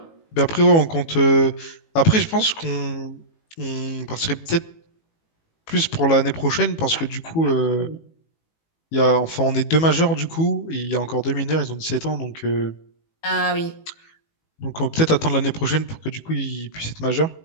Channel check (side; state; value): right; late; 18 ms